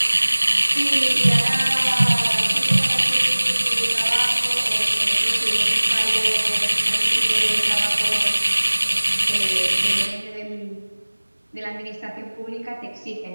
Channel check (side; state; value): both; inverted; correlation -1.00